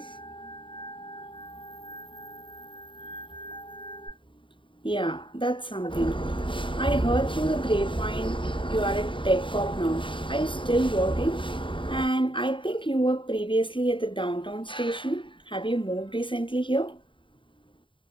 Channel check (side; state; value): right; late; 0.24 ms